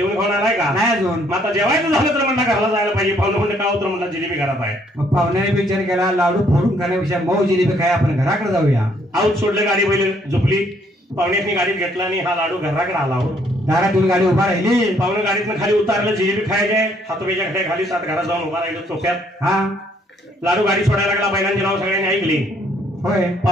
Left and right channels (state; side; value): normal; both; correlation 0.66